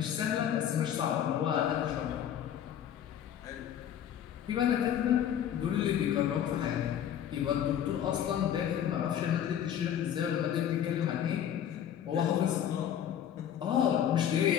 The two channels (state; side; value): quieter; right; 9.9 dB